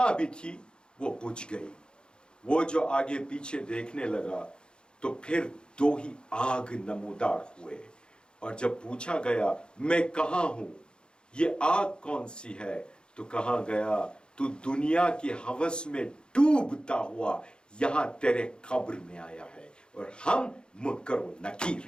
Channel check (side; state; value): right; late; 0.050 ms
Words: بھی تھی وہ بجھ گئی. وہ جو آگے پیچھے دیکھنے لگا تو پھر 2 ہی آگ نمودار ہوئے, اور جب پوچھا گیا میں کہاں ہوں, یہ آگ کون سی ہے, تو کہا گیا تو دنیا کی ہوس میں ڈوبتا ہوا یہاں تیرے قبر میں آیا ہے, اور ہم منکر و نکیر